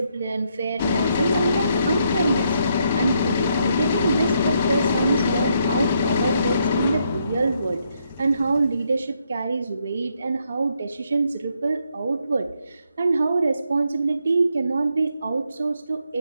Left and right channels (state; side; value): inverted; both; correlation -0.75